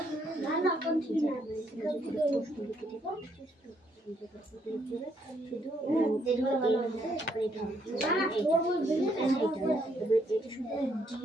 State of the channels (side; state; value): both; normal; correlation 0.72